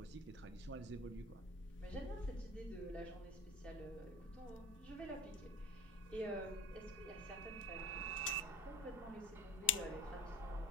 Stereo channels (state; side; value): normal; both; correlation 0.37